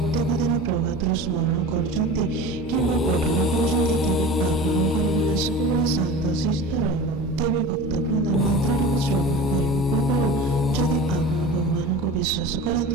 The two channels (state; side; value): normal; both; correlation 0.35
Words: ଦିନ ପ୍ରଭାତରୁ ସ୍ମରଣ କରୁଛନ୍ତି କିମ୍ବା ପଠନ କରୁଛନ୍ତି, ତେବେ ଆପଣଙ୍କର ମନ ସବୁବେଳେ ଶାନ୍ତ ଶିଷ୍ଟ ରହିବ। ତେବେ ଭକ୍ତବୃନ୍ଦ, ମନ୍ତ୍ରଟିକୁ ଶ୍ରବଣ କରିବା ପୂର୍ବରୁ ଯଦି ଆପଣ ଭଗବାନଙ୍କୁ ବିଶ୍ୱାସ